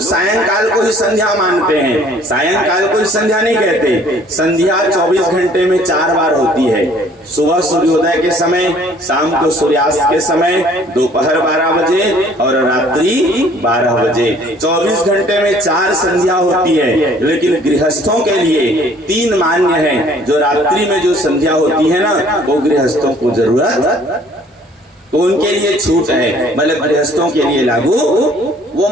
सायंकाल को ही संध्या मानते हैं, सायंकाल को ही संध्या नहीं कहते। संध्या 24 घंटे में 4 बार होती है, सुबह सूर्योदय के समय, शाम को सूर्यास्त के समय, दोपहर 12 बजे और रात्रि 12 बजे। 24 घंटे में 4 संध्या होती है। लेकिन गृहस्थों के लिए 3 मान्य है। जो रात्रि में जो संध्या होती है ना, वो गृहस्थों को जरूरत, तो उनके लिए छूट है, मतलब गृहस्थों के लिए लागू, वो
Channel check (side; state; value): both; normal; correlation 0.57